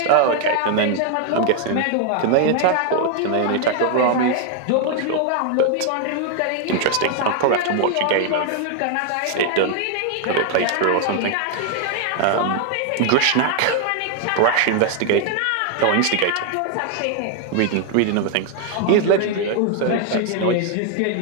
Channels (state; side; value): different; both; correlation 0.00